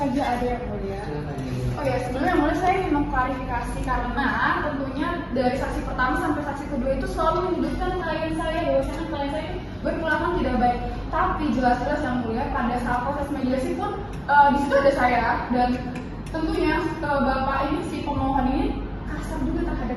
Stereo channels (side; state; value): both; identical; correlation 1.00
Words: ada yang mulia. Oh ya, sebenarnya yang mulia saya ingin mengklarifikasi karena tentunya dari saksi pertama sampai saksi kedua itu selalu menyudutkan klien saya bahwasanya klien saya berperilaku tidak baik. Tapi jelas-jelas yang mulia pada saat proses mediasi pun di situ ada saya dan tentunya bapak ini si pemohon ini kasar juga terhadap